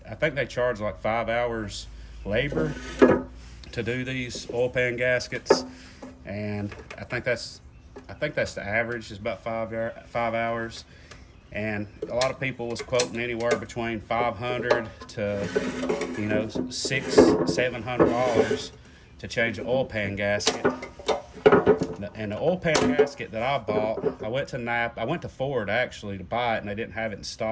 think they charge like 5 hours labor to do these oil pan gaskets, and I think that's the average, is about 5 hours. And a lot of people was quoting anywhere between $500 to $600-700 to change an oil pan gasket. And the oil pan gasket that I bought, I went to Ford actually to buy it, and they didn't have it in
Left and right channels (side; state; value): both; identical; correlation 1.00